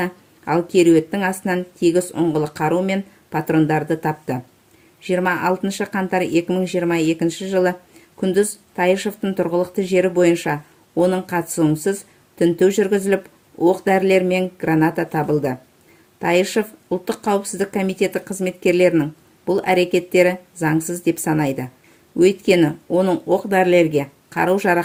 ал кереуеттің астынан тегіс ұңғылы қару мен патрондарды тапты. 26 қаңтар 2022 жылы күндіз Тайышевтың тұрғылықты жері бойынша оның қатысуынсыз тінту жүргізіліп, оқ-дәрілер мен граната табылды. Тайышев ұлттық қауіпсіздік комитеті қызметкерлерінің бұл әрекеттері заңсыз деп санайды. Өйткені оның оқ-дәрілерге,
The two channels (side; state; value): both; identical; correlation 1.00